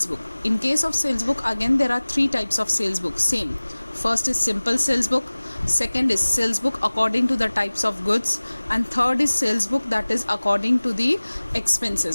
book. In case of sales book, again there are three types of sales book. Same, first is simple sales book, second is sales book according to the types of goods, and third is sales book that is according to the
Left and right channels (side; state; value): both; inverted; correlation -1.00